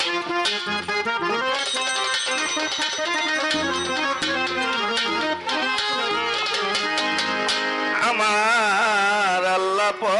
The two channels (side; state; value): both; identical; correlation 1.00